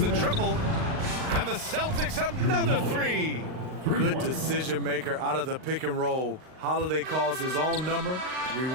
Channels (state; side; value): late; left; 38 ms